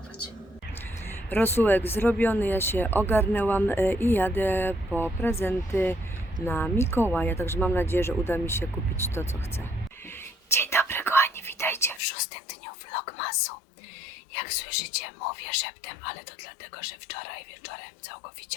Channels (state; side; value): drops out; right; at 12.0 s